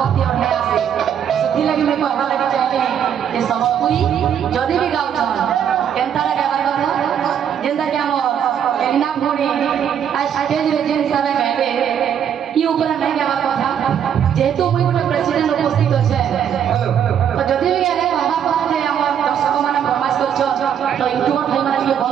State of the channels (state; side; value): quieter; left; 8.8 dB